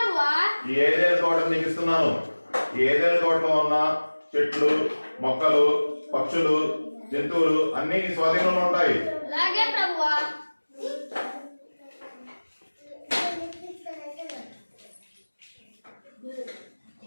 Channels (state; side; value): inverted; both; correlation -1.00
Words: ఈ ఏదైనా తోట నీకు ఇస్తున్నాను. ఈ ఏదైనా తోటలో ఉన్న చెట్లు, మొక్కలు, పక్షులు, జంతువులు అన్ని స్వాధీనంలో ఉంటాయి. అలాగే ప్రభువా.